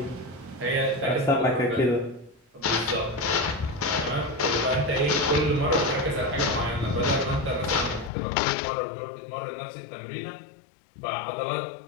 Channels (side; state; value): right; drops out; at 8.1 s